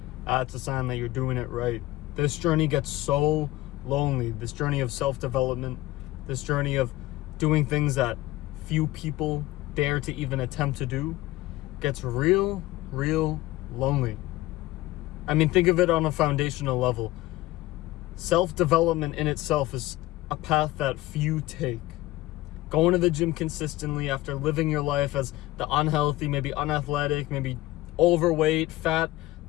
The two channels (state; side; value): quieter; right; 17.4 dB